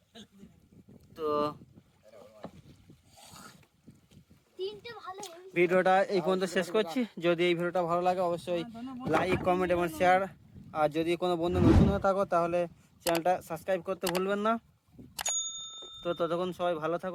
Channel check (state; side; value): identical; both; correlation 1.00